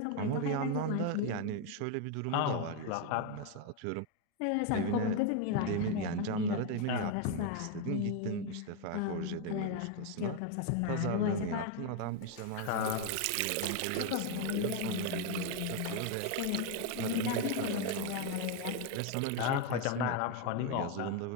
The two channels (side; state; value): both; different; correlation 0.01